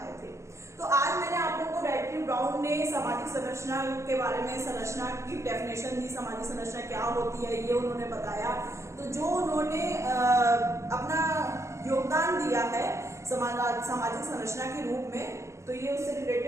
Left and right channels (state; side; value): late; left; 0.14 ms